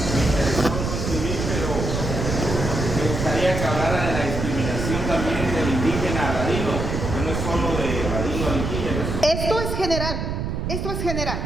me gustaría que hablara de la discriminación también del indígena a ladino, que no es solo de ladino a indígena. Esto es general, esto es general.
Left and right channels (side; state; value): right; noise; rumble, 3 dB below the sound